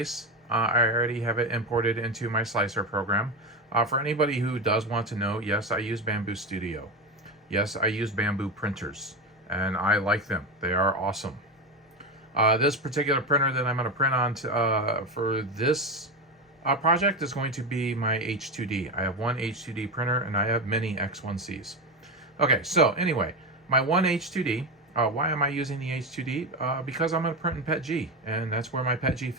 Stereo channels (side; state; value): both; normal; correlation 0.18